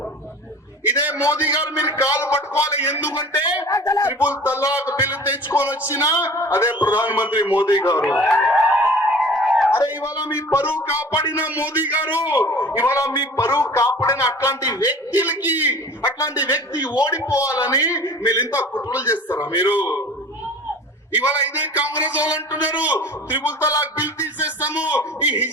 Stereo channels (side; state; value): both; normal; correlation 0.42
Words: ఇదే మోదీ గారు మీరు కాలు పట్టుకోవాలి. ఎందుకంటే ట్రిపుల్ తలాక్ బిల్లు తెచ్చుకొని వచ్చిన అదే ప్రధానమంత్రి మోదీ గారు. అరే ఇవాళ మీ పరువు కాపాడిన మోదీ గారు, ఇవాళ మీ పరువు కాపాడిన అట్లాంటి వ్యక్తులకి, అట్లాంటి వ్యక్తి ఓడిపోవాలని మీరు ఇంత కుట్రలు చేస్తారా మీరు? ఇవాళ ఇదే కాంగ్రెస్ వాళ్ళు అంటున్నారు త్రిపుల్ తలాక్ బిల్ తీసేస్తాము, ఈ